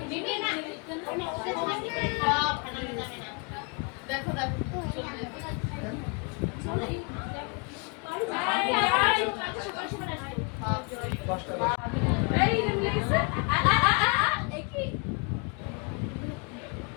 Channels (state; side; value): quieter; right; 33.2 dB